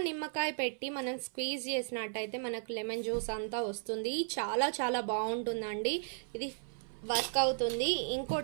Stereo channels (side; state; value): left; silent; 54 dB below the other